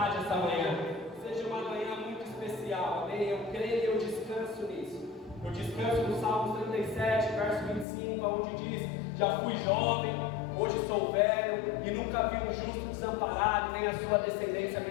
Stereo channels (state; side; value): drops out; right; at 7.9 s